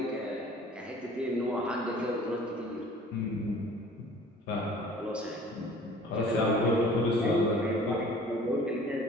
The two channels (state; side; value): normal; both; correlation 0.49